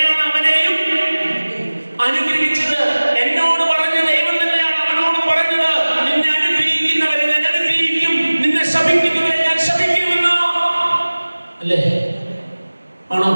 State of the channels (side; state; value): both; inverted; correlation -1.00